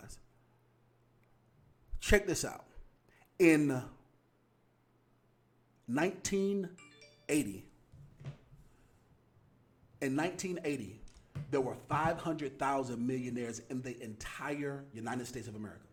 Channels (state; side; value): identical; both; correlation 1.00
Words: Check this out. In 1980, there were 500,000 millionaires in the entire United States of America.